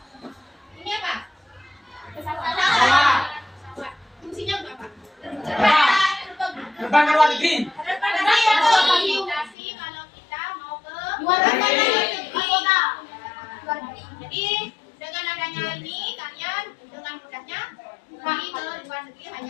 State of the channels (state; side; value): drops out; right; at 9.6 s